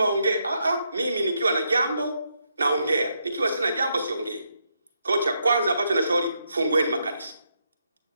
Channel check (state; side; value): inverted; both; correlation -0.79